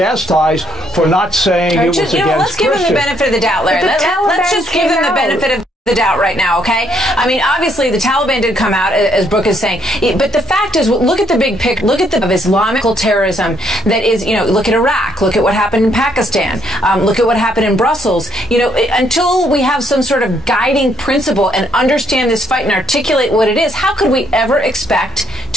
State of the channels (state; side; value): normal; both; correlation 0.71